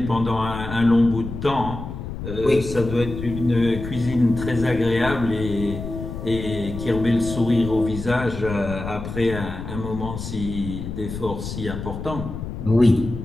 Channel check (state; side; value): noise; left; rumble, 8 dB below the sound